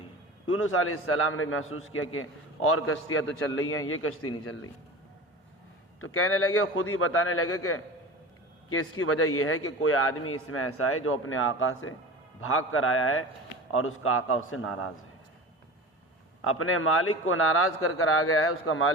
یونس علیہ السلام نے محسوس کیا کہ اور کشتیاں تو چل رہی ہیں، یہ کشتی نہیں چل رہی، تو کہنے لگے، خود ہی بتانے لگے کہ اس کی وجہ یہ ہے کہ کوئی آدمی اس میں ایسا ہے جو اپنے آقا سے بھاگ کر آیا ہے اور اس کا آقا اس سے ناراض ہے، اپنے مالک کو ناراض کر کر آ گیا ہے، اس کا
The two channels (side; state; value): both; normal; correlation 0.33